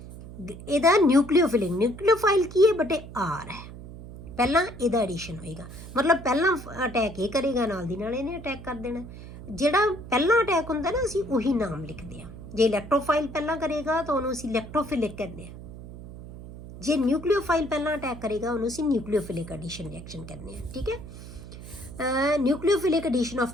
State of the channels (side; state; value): right; noise; hum, 14 dB below the sound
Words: ਇਹਦਾ ਨਿਊਕਲੀਓਫਿਲਿਕ, ਨਿਊਕਲੀਓਫਾਈਲ ਕੀ ਹੈ ਬੇਟੇ, ਆਰ ਹੈ। ਪਹਿਲਾਂ ਇਹਦਾ ਐਡੀਸ਼ਨ ਹੋਏਗਾ, ਮਤਲਬ ਪਹਿਲਾਂ ਅਟੈਕ ਇਹ ਕਰੇਗਾ, ਨਾਲ ਦੀ ਨਾਲ ਇਹਨੇ ਅਟੈਕ ਕਰ ਦੇਣਾ। ਜਿਹੜਾ ਪਹਿਲਾਂ ਅਟੈਕ ਹੁੰਦਾ ਨਾ, ਅਸੀਂ ਉਹੀ ਨਾਮ ਲਿਖਦੇ ਹਾਂ। ਜੇ ਇਲੈਕਟ੍ਰੋਫਾਈਲ ਪਹਿਲਾਂ ਕਰੇਗਾ ਤਾਂ ਉਹਨੂੰ ਅਸੀਂ ਇਲੈਕਟ੍ਰੋਫਿਲਿਕ ਕਹਿੰਦੇ ਹਾਂ। ਜੇ ਨਿਊਕਲੀਓਫਾਈਲ ਪਹਿਲਾਂ ਅਟੈਕ ਕਰੇਗਾ ਉਹਨੂੰ ਅਸੀਂ ਨਿਊਕਲੀਓਫਿਲਿਕ ਐਡੀਸ਼ਨ ਰਿਐਕਸ਼ਨ ਕਹਿੰਦੇ ਹਾਂ। ਠੀਕ ਹੈ। Nucleophilic addition